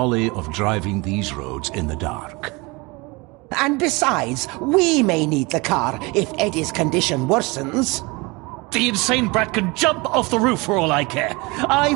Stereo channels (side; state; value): left; quieter; 25.6 dB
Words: of driving these roads in the dark. And besides, we may need the car if Eddie's condition worsens. The insane brat can jump off the roof for all I care. I,